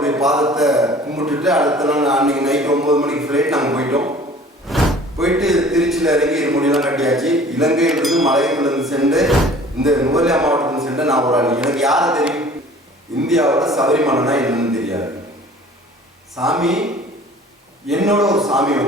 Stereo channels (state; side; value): normal; both; correlation 0.48